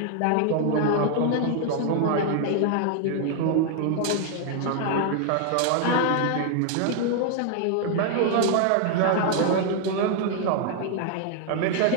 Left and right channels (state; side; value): different; both; correlation 0.00